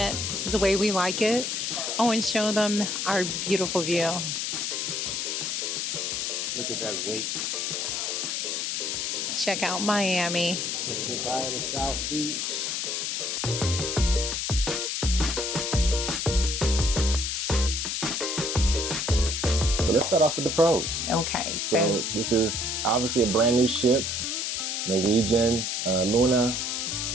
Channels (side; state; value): left; noise; hiss, 1 dB below the sound